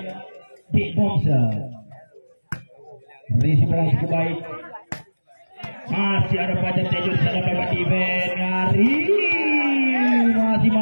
Big Boxer. Risi bola cukup baik. Masih ada Fajar Tejo di sana lewat event. Ari masih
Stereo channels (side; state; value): both; inverted; correlation -1.00